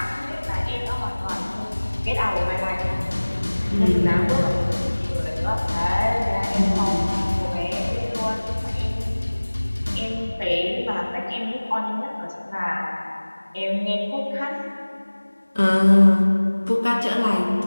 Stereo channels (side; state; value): both; inverted; correlation -1.00